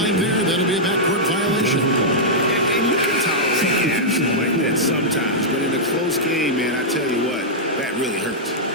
there. That'll be a backcourt violation. And you can tolerate gaps like that sometimes. But in a close game, man, I tell you what, that really hurts.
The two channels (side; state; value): both; normal; correlation -0.08